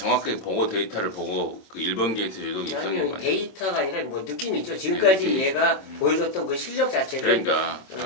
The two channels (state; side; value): late; right; 26 ms